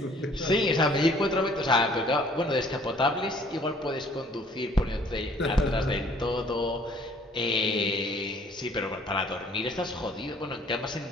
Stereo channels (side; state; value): both; normal; correlation 0.57